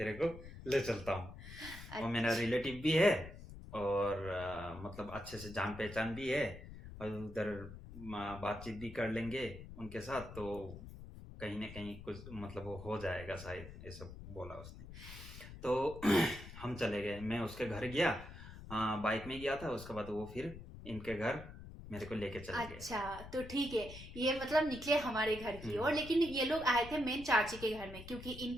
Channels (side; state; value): left; noise; rumble, 13 dB below the sound